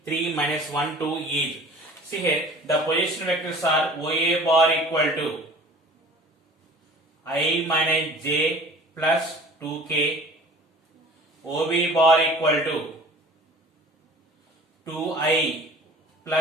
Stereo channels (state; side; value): normal; both; correlation 0.45